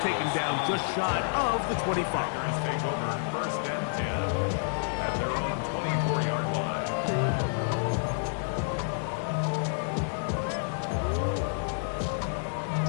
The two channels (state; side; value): silent; right; 58 dB below the other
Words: taken down just shy of the 25. Packers take over first and 10 at their own 24-yard line.